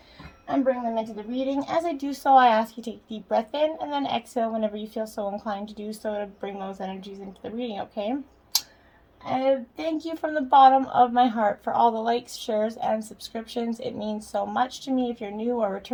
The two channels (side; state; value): both; identical; correlation 1.00